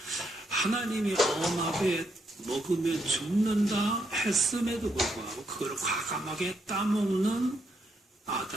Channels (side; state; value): both; normal; correlation 0.77